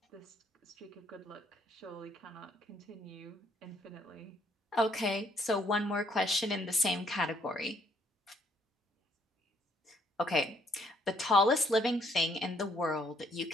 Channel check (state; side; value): normal; both; correlation 0.67